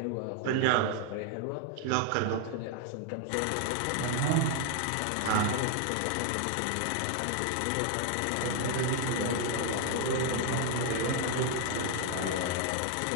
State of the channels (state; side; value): different; both; correlation 0.00